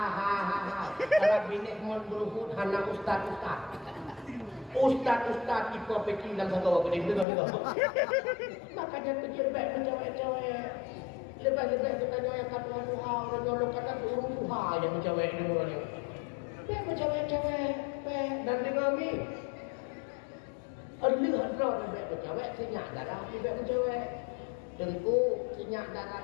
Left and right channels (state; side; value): drops out; right; at 7.2 s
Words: kalau binek mau beruhud hana ustaz itu peki dalam satu waktu ini juga makanya kejir baik mencewek-cewek lepas-lepas kita nyoyak kata Tuhan dan nyolok kata turun Tuhan yang mencewek ini mulanya baik mencewek-cewek dan dengan kami lihat roh baik mencewek sinyak darah baik mencewek tentu sinyak darah